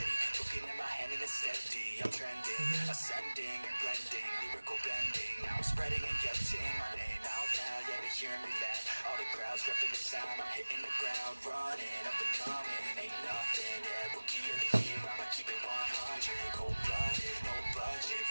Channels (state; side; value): inverted; both; correlation -1.00